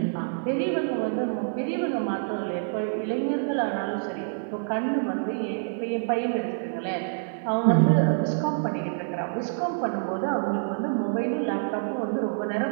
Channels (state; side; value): silent; left; digital silence